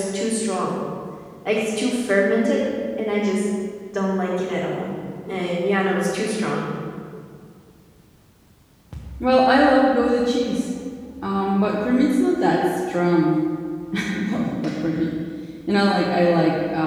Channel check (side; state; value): both; identical; correlation 1.00